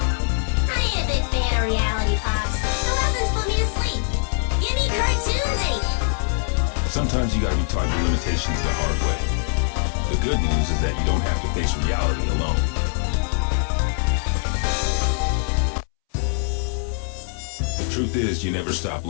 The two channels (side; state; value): right; silent; 64 dB below the other